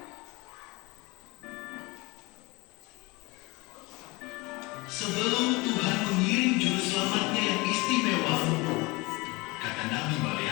Sebelum Tuhan mengirim juru selamatnya yang istimewa, kata Nabi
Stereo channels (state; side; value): quieter; right; 24.6 dB